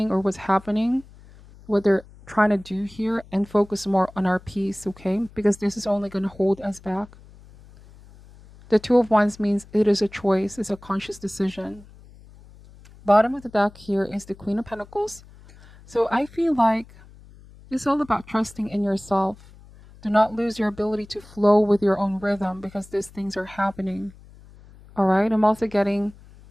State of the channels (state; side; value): noise; left; hum, 23 dB below the sound